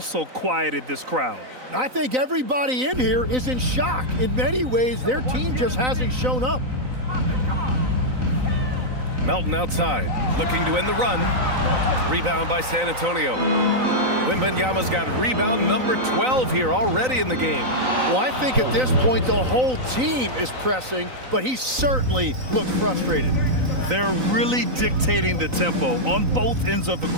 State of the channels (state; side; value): late; left; 3.9 ms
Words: quieted this crowd. I think everybody in here is in shock. In many ways, their team just hasn't shown up. Melton outside, looking to end the run. Rebound by San Antonio. Wembanyama's got rebound number 12 here already in the game. Well, I think at this point, the whole team is pressing, but he certainly looks frustrated. They're really dictating the tempo on both ends of the